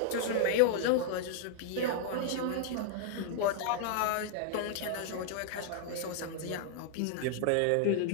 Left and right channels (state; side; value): different; both; correlation -0.01